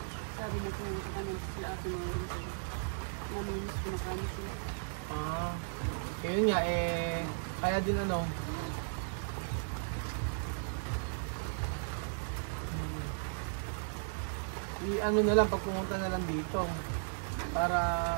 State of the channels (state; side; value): silent; left; 54 dB below the other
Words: Sabi niya kung sa kanya sila ate mga rin sila. Naminis ko na kanya sila. Ah, yun nga, eh, kaya din ano, i-ano na lang, pag pumunta na lang dito, para